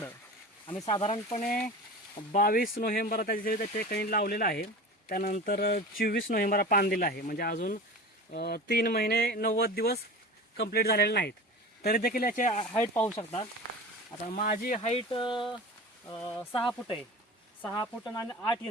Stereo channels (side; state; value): both; normal; correlation 0.34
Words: आम्ही साधारणपणे 22 नोव्हेंबर त्याच्या ठिकाणी लावलेलं आहे। त्यानंतर 24 नोव्हेंबर पान दिलं आहे, म्हणजे अजून 3 महिने 90 दिवस कंप्लीट झालेले नाहीत, तरी देखील याची हाईट पाहू शकता। आता माझी हाईट 6 फूट आहे, 6 फूट आणि 8